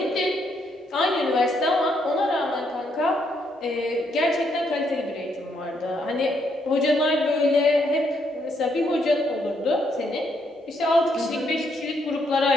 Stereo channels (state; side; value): normal; both; correlation 0.74